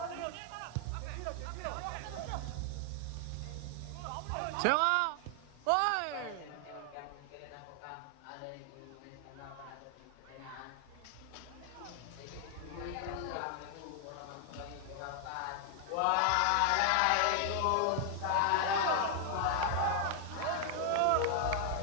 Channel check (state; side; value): different; both; correlation 0.00